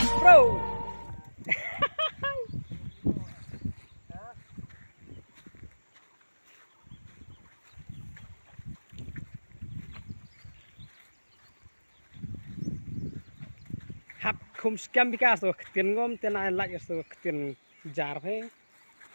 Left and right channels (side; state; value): both; inverted; correlation -1.00